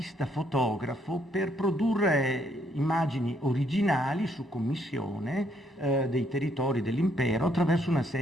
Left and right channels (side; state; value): both; normal; correlation 0.71